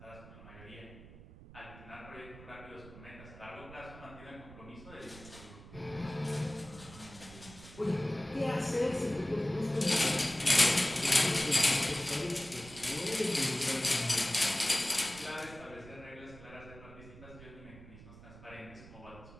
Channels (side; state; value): right; noise; rumble, 18 dB below the sound